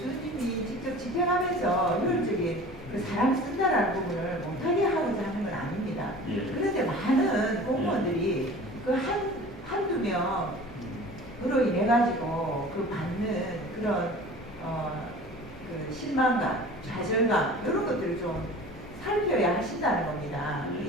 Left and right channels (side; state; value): both; normal; correlation 0.41